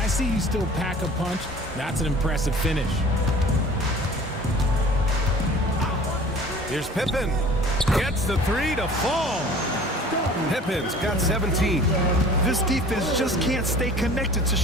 see you still pack a punch. That's an impressive finish. Here's Pippen. Gets the 3 to fall. Pippen's got 17. This defense just can't stay connected to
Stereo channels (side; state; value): both; normal; correlation 0.46